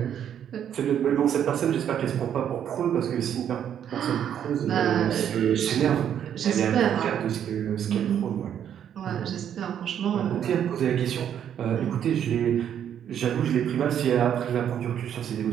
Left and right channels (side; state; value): left; quieter; 9.4 dB